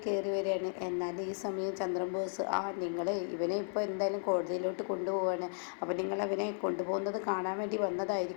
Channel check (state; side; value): silent; right; digital silence